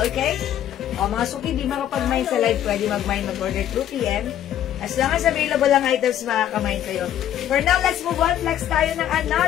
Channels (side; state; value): right; quieter; 11.1 dB